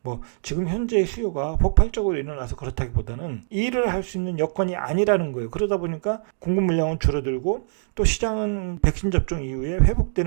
뭐 지금 현재 수요가 폭발적으로 일어나서 그렇다기보다는 일을 할 수 있는 여건이 아니라는 거예요. 그러다 보니까 공급 물량은 줄어들고 또 시장은 백신 접종 이후에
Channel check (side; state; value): left; silent; digital silence